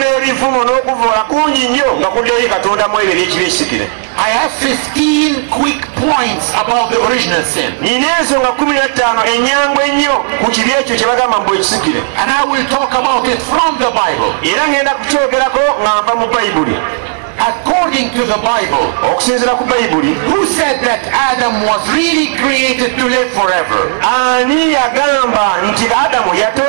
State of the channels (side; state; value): left; silent; digital silence